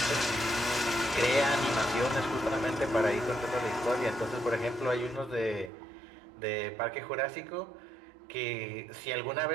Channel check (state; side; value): drops out; left; at 5.7 s